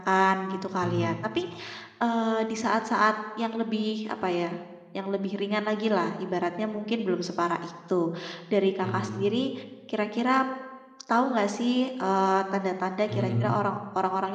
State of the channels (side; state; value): both; identical; correlation 1.00